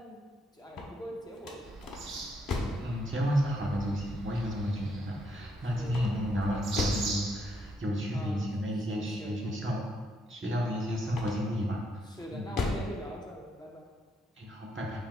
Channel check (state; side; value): normal; both; correlation 0.75